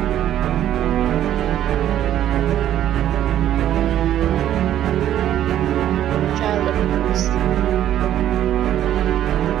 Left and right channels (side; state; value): left; quieter; 11.6 dB